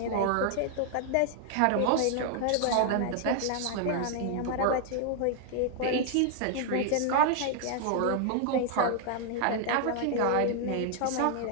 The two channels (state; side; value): different; both; correlation 0.00